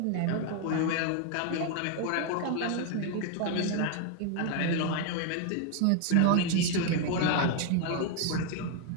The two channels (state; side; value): different; both; correlation 0.00